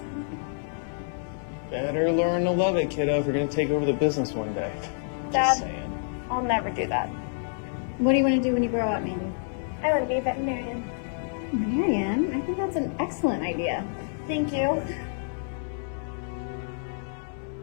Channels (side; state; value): right; silent; digital silence